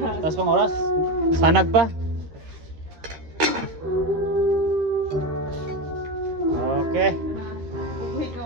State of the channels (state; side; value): late; left; 13 ms